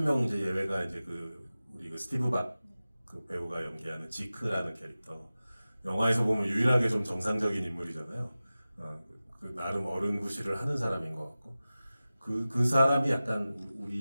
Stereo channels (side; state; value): both; inverted; correlation -0.96